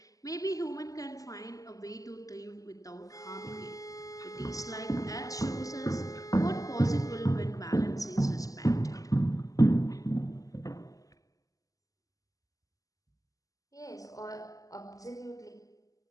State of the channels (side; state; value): right; late; 0.17 ms